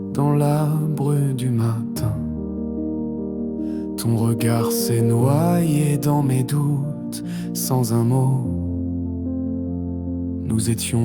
dans la brume du matin. Ton regard s'est noyé dans mes doutes sans un mot. Nous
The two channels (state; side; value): identical; both; correlation 1.00